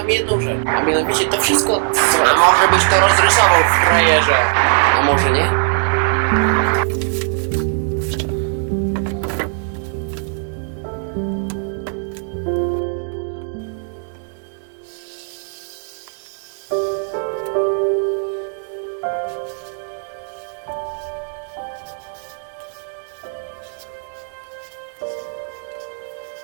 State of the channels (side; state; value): left; silent; 56 dB below the other